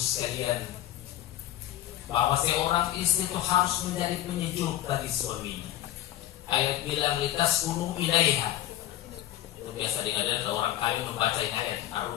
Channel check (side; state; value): right; quieter; 13.2 dB